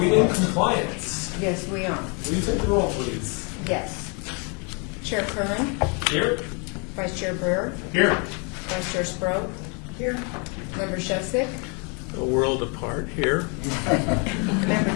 in compliance? Yes, we are. Will you take the roll, please? Yes. Chair Curran, Here. Vice Chair Brewer, Here. Vice Chair Sproat. Here. Member Shevsik, A world apart here. Member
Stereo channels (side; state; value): right; quieter; 34.7 dB